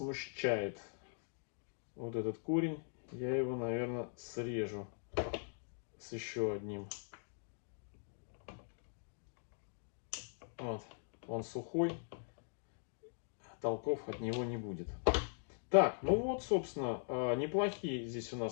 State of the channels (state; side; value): silent; right; digital silence